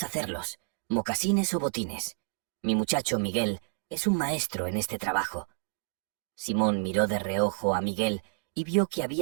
hacerlos, mocasines o botines. Mi muchacho Miguel es un maestro en este trabajo». Simón miró de reojo a Miguel y vio que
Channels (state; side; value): silent; left; 58 dB below the other